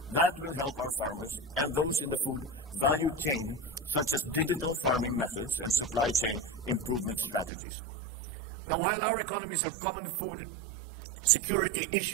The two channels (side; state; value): left; drops out; at 7.5 s